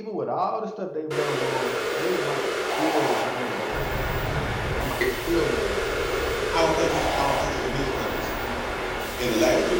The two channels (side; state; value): both; identical; correlation 1.00